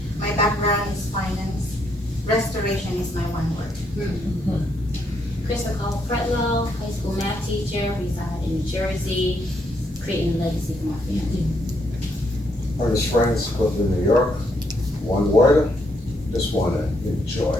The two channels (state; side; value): normal; both; correlation 0.75